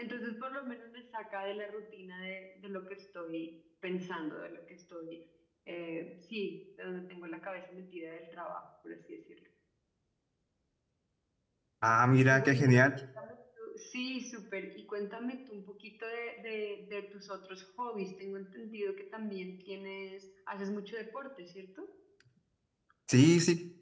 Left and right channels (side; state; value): both; identical; correlation 1.00